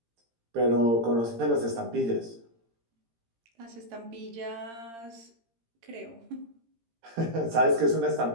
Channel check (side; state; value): left; late; 18 ms